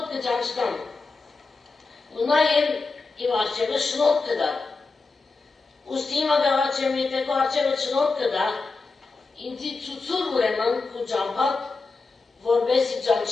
կճանչնամ, ու նաև իմ արջևը շնորհ կդա։ Ուստի հիմա գաղաչեմ, եթե քո արջևը շնորհ կդա, ինձի ցուցուր ուրեմն քո ճամփատ, որպեսզի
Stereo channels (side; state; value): right; quieter; 4.0 dB